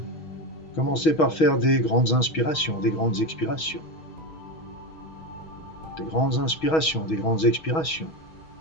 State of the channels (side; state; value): right; late; 6.3 ms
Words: commencez par faire des grandes inspirations, des grandes expirations. Des grandes inspirations, des grandes expirations